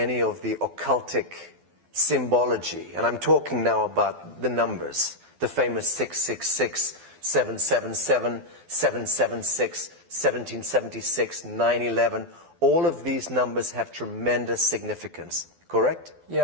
of the occultic symbology? And I'm talking now about the numbers, the famous 666, 777, 776, 1776, 9/11. All of these numbers have tremendous significance, correct?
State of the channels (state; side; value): late; left; 12 ms